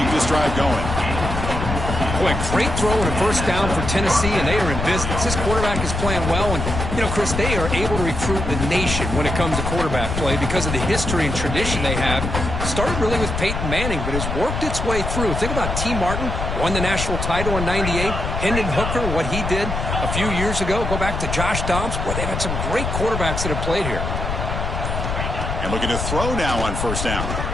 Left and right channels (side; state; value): left; noise; rumble, 3 dB below the sound